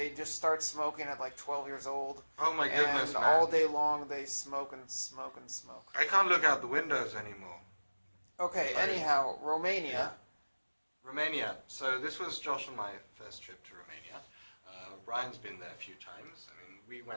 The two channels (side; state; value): both; inverted; correlation -1.00